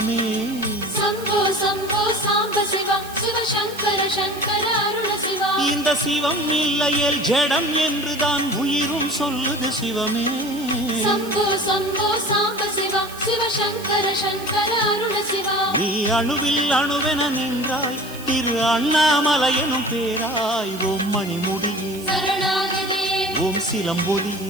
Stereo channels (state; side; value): noise; right; hiss, 16 dB below the sound